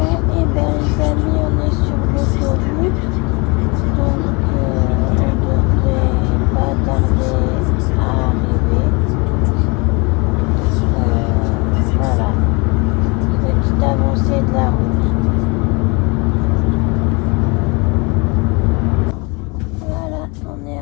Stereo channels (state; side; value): quieter; right; 29.0 dB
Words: eh bien les amis, on est sur l'autoroute. Donc, on devrait pas tarder à arriver. Voilà. Petite avancée de la route. Voilà, on est